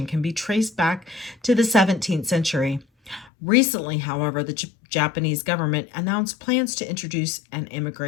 can be traced back to the 17th century. Recently, however, the Japanese government announced plans to introduce an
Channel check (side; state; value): right; drops out; at 3.3 s